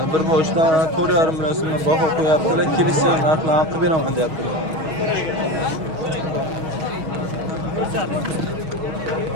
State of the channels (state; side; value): late; left; 6.3 ms